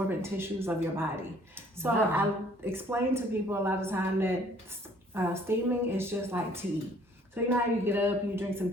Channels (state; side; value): normal; both; correlation 0.58